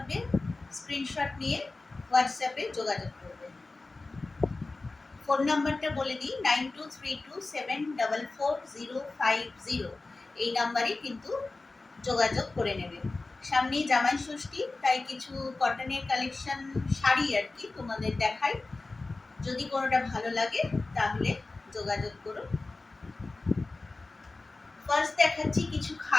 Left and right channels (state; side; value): quieter; right; 3.4 dB